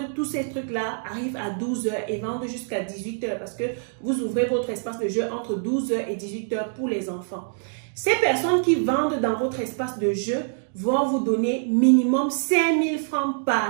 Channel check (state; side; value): silent; left; digital silence